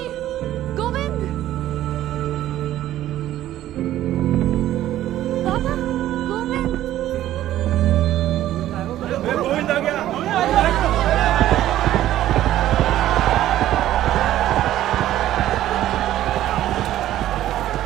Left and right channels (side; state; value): left; quieter; 13.3 dB